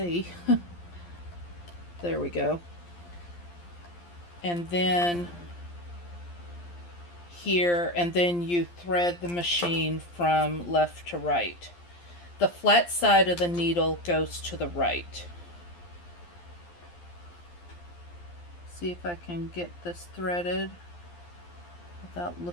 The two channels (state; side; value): late; right; 11 ms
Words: There we go. And then here, and then you thread the machine from left to right. The flat side of the needle goes to the right. See if I can get this threaded without